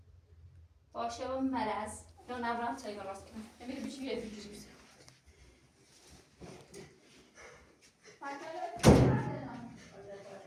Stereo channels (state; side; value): identical; both; correlation 1.00